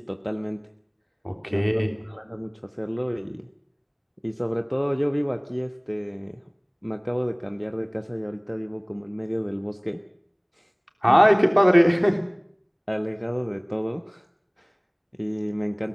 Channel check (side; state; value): both; identical; correlation 1.00